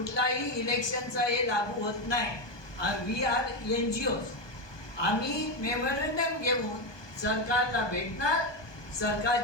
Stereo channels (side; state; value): right; late; 1.2 ms